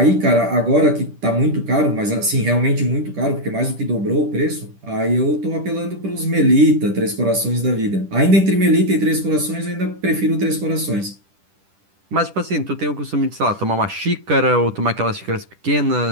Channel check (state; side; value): late; left; 10 ms